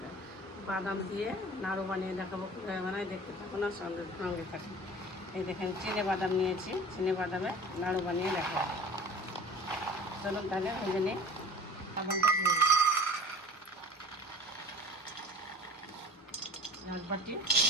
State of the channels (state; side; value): normal; both; correlation 0.42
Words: বাদাম দিয়ে নাড়ু বানিয়ে দেখাবো কীভাবে বানাই, দেখতে থাকুন আর সঙ্গে থাকুন। এই দেখেন চিনে বাদাম নিয়েছি, চিনে বাদামে নাড়ু বানিয়ে দেখাবো। চলুন তাহলে ভেজে নিই। বাদামটা ভেজে নেব, এক বাটি